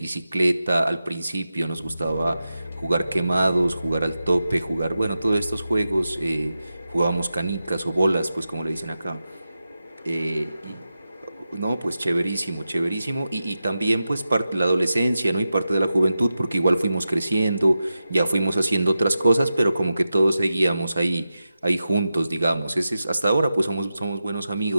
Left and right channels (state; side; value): inverted; both; correlation -0.91